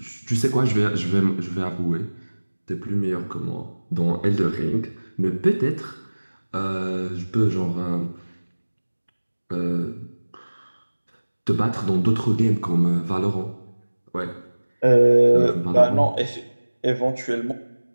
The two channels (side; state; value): both; inverted; correlation -1.00